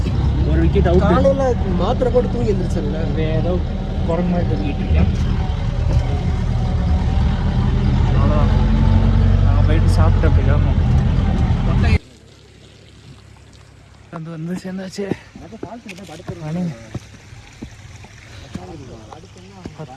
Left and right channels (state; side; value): identical; both; correlation 1.00